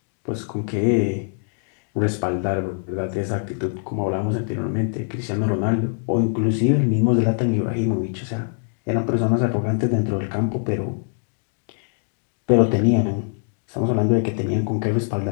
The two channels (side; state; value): right; silent; digital silence